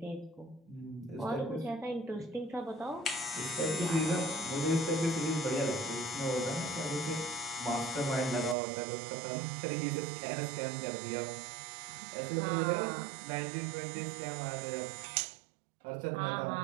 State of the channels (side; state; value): left; drops out; at 8.6 s